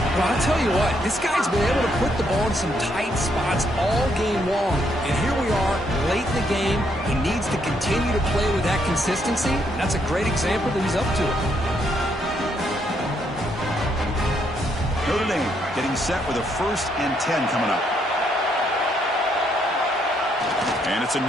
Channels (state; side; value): normal; both; correlation 0.74